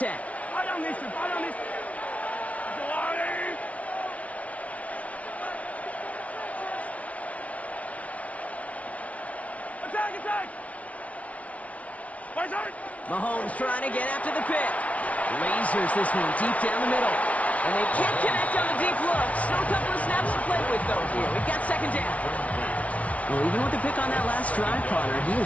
Mahomes trying to get after the pick. Lasers this one deep down the middle. And they can't connect on the deep look. Still a couple of snaps to play with, though, here. We've got 2nd down. Well, even with the pick on that last drive, Connor, he was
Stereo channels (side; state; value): right; late; 0.066 ms